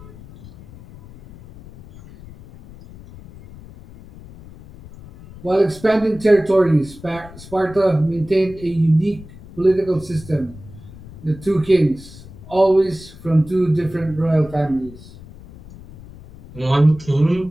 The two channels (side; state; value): left; noise; rumble, 19 dB below the sound